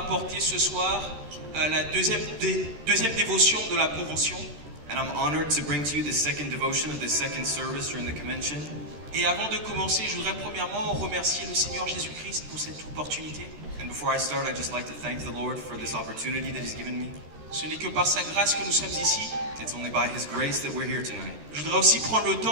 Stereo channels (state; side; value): late; left; 13 ms